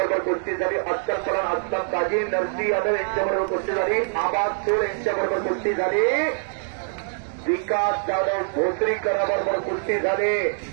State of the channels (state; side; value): silent; left; digital silence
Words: कुस्ती झाली. अख्तर परान अस्लम काजी, नरसी यादव यांच्याबरोबर कुस्ती झाली. आबाद सोड यांच्याबरोबर कुस्ती झाली. विकास जाधव भोसरीकराबरोबर कुस्ती झाली.